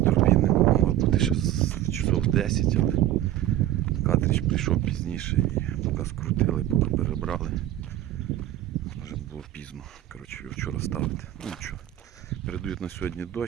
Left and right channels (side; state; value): left; quieter; 13.2 dB